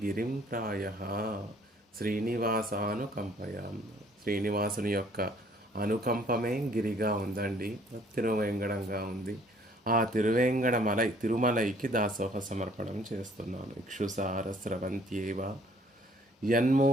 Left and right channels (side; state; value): both; normal; correlation 0.60